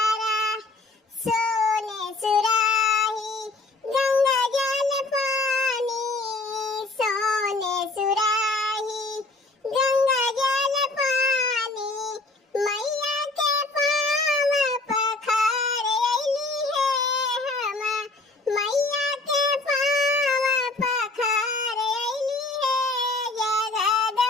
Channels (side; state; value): right; quieter; 3.2 dB